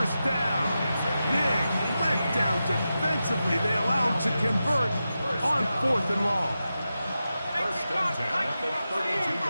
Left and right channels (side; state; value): both; inverted; correlation -0.91